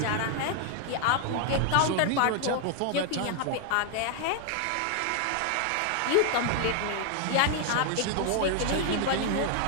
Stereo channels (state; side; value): different; both; correlation 0.00